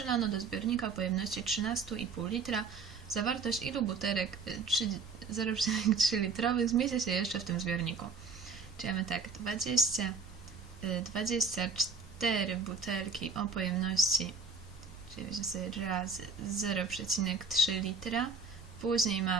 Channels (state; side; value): quieter; left; 4.5 dB